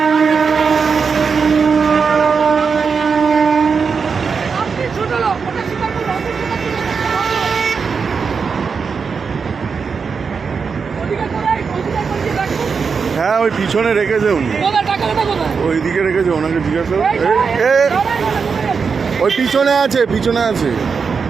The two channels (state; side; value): quieter; left; 5.5 dB